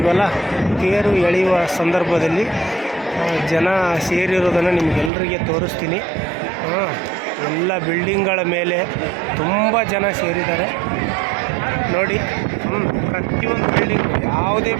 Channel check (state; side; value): drops out; left; at 5.1 s